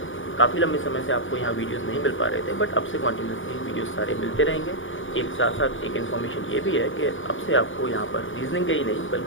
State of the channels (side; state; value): right; late; 0.57 ms